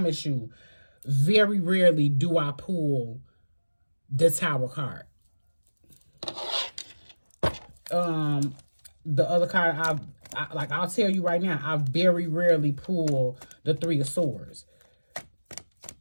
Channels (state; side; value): inverted; both; correlation -1.00